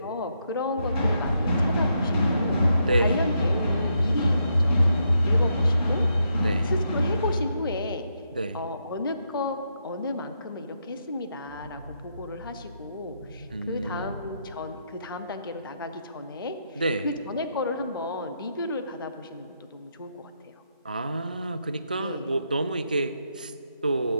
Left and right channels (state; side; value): inverted; both; correlation -0.79